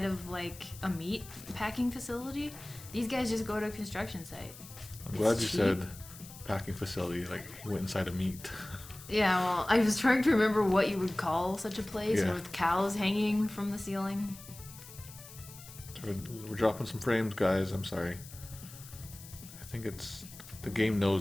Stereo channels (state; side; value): noise; left; hiss, 17 dB below the sound